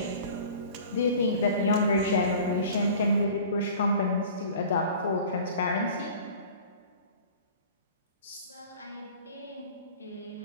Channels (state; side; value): inverted; both; correlation -0.42